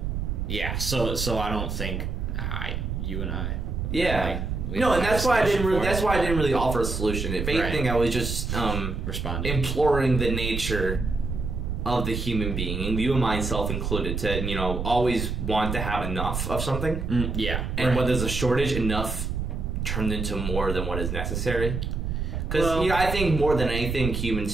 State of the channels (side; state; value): right; noise; rumble, 3 dB below the sound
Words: yeah, so I don't think you and I... Yeah. No, and that's why I didn't really offer a solution. If anything, I was just responding, imploring the nature of the human being, and you and myself included, to always want to have enough of something. Yeah. And when there's a shortage, enough turned into more than what is necessary. Because I think more than anything, humans